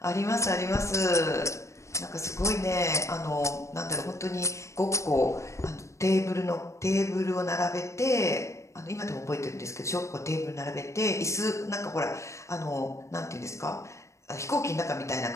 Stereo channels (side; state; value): right; late; 0.14 ms